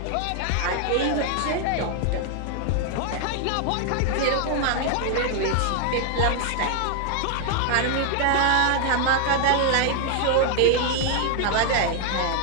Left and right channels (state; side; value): different; both; correlation 0.00